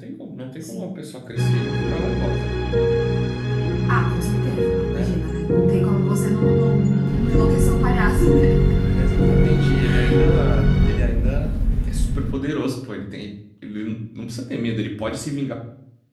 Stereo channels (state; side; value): identical; both; correlation 1.00